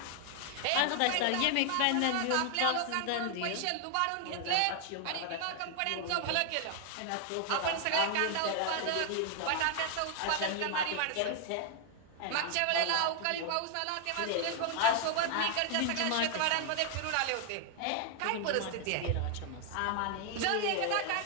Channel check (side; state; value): both; different; correlation 0.00